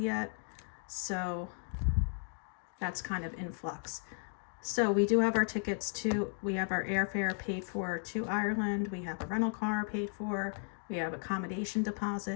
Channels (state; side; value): silent; right; 54 dB below the other